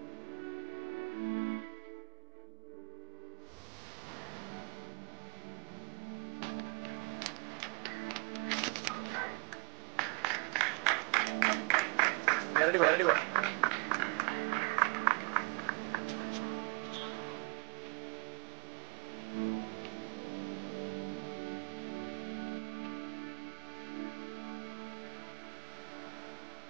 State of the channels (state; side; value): quieter; left; 31.3 dB